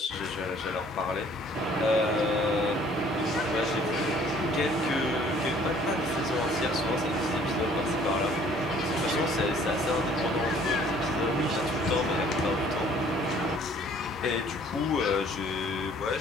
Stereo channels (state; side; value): normal; both; correlation 0.57